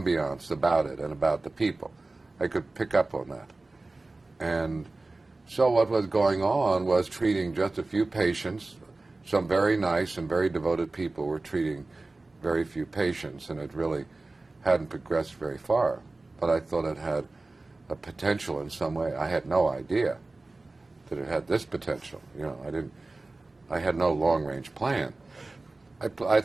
about it and about the people. I could pick up on that. And so what was going on was treating just a few patients. Some very nice and very devoted people were treating very few patients, and it really hadn't progressed very far. But I thought it had a potential in some way. I had no idea that it had this potential. You know, I had no long-range plan. I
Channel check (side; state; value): left; quieter; 3.2 dB